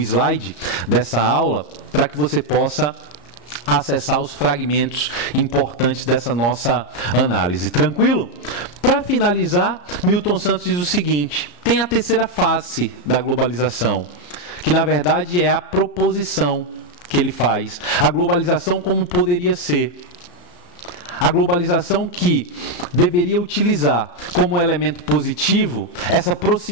dessa aula, para que você possa acessar os fragmentos importantes dessa nossa análise. Tranquilo? Para finalizar, Milton Santos diz o seguinte: tem a terceira face da globalização, que na verdade é a proposição que ele faz. A globalização como poderia ser. A globalização que deveria utilizar como elemento positivo essa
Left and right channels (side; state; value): right; late; 34 ms